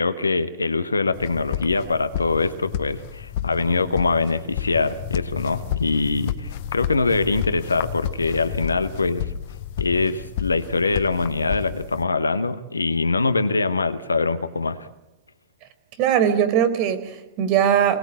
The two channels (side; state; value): both; inverted; correlation -0.64